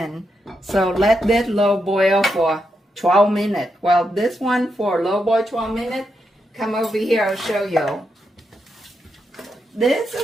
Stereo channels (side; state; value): both; normal; correlation 0.83